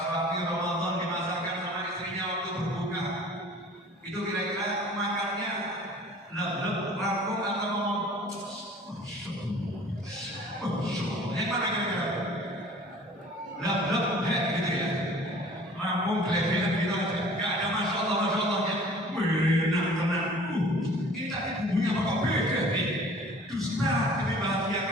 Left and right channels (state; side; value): normal; both; correlation 0.48